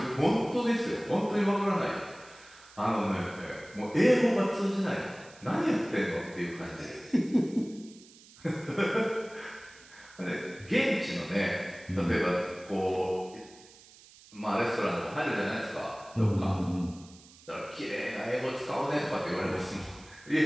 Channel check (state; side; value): noise; right; hiss, 23 dB below the sound